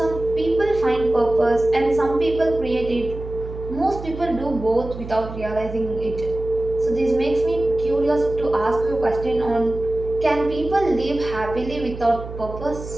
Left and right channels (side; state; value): right; noise; hum, 11 dB below the sound